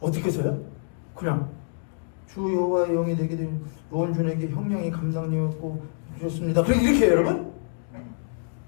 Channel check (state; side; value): silent; right; digital silence